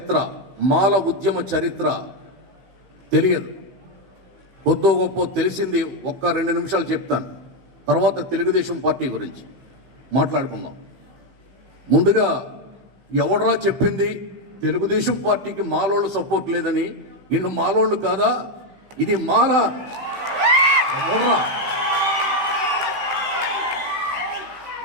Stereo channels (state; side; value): late; left; 15 ms